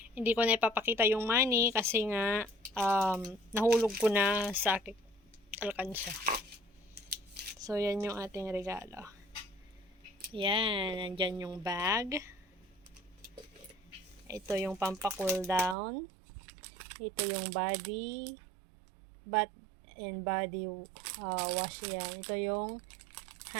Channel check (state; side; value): drops out; left; at 15.8 s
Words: hindi ko na ipapakita yung money kasi nga nahulog ko na sa aking alkansya. So, yan yung ating regalo. Yan. Nandyan yung bag. Ito yung pampa-cool down. Ito yung body bath and body wash yan. Ito yung